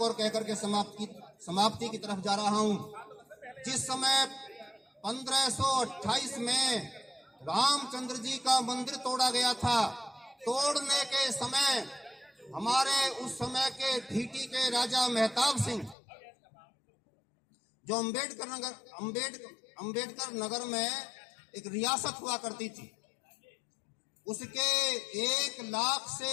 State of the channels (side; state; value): right; drops out; at 16.0 s